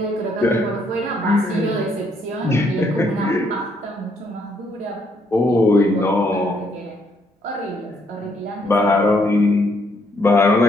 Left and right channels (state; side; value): normal; both; correlation 0.71